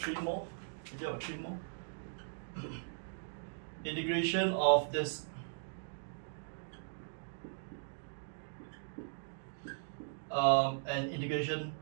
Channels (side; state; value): left; silent; digital silence